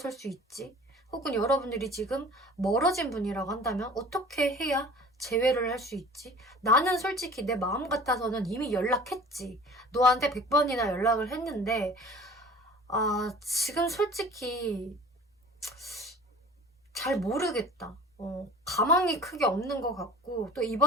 수 있지? 혹은 여러분들이 지금 멀어진 분이라고 한다면 어떻게 해야 재회를 할 수 있지? 나는 솔직히 내 마음 같아서는 이미 연락했지. 너한테 100번이나 연락을 했는데 지금 솔직히 잘 모르겠다. 가망이 크게 없는 것 같고 또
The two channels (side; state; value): both; normal; correlation 0.44